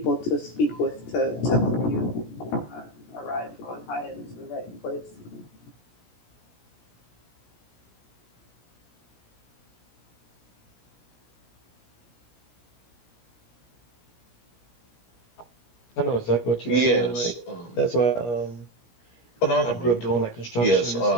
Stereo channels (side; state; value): right; late; 17 ms